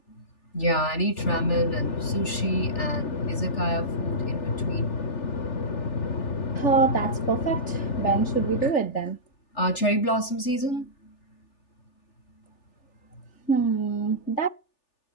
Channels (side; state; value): right; late; 3.4 ms